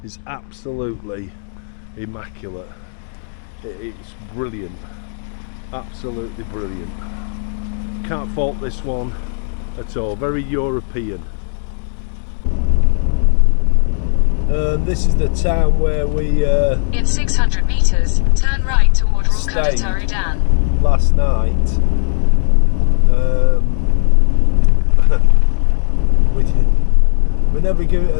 is absolutely immaculate. It's brilliant, absolutely brilliant. Can't fault this one at all. Very European. This is the town where we in 600 meters, turn right toward Crocodile Dam. Last night. We never give it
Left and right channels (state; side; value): silent; right; digital silence